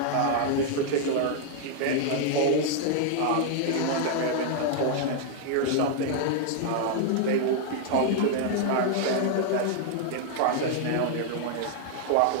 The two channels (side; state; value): both; different; correlation 0.00